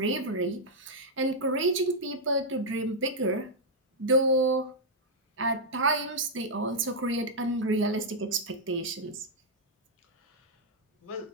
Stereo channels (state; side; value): normal; both; correlation -0.04